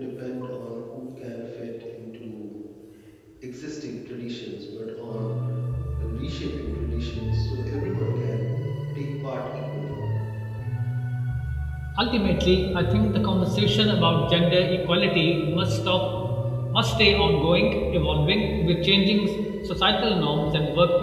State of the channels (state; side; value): identical; both; correlation 1.00